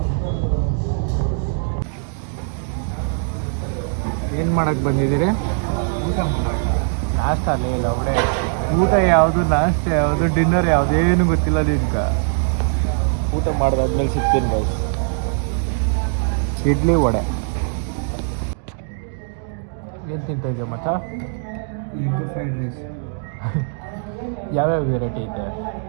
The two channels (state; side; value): silent; left; 59 dB below the other